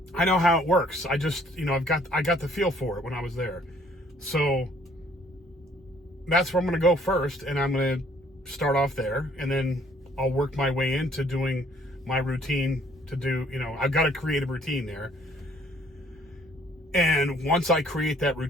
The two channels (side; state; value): both; normal; correlation 0.61